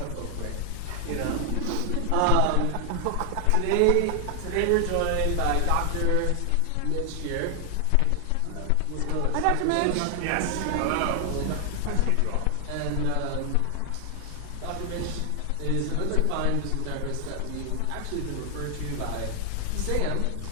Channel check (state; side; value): different; both; correlation 0.00